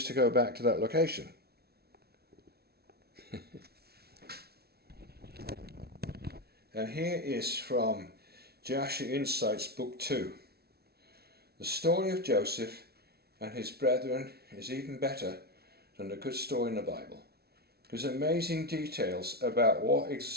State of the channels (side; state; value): left; late; 0.45 ms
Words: to go back to that location. And here is from ENOCH INSIGHTS, Book 2. The story of Joseph and his brethren is even better than the good story in the Bible. There's amazing details about what